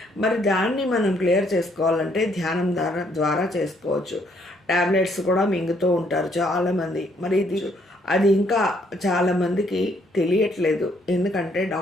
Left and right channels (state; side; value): normal; both; correlation 0.69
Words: మరి దాన్ని మనం క్లియర్ చేసుకోవాలంటే ధ్యానం ద్వారా చేసుకోవచ్చు. ట్యాబ్లెట్స్ కూడా మింగుతూ ఉంటారు చాలామంది. మరి అది ఇంకా చాలామందికి తెలియట్లేదు. ఎందుకంటే